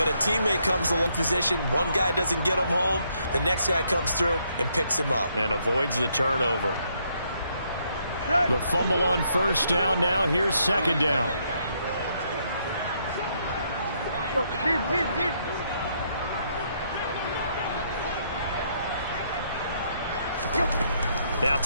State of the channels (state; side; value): inverted; both; correlation -0.73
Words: a teammate comes along position, one guy doesn't get him home, the next guy comes through and picks him up. And avoids the turnover. The fumble on first down now. Here's second down. Now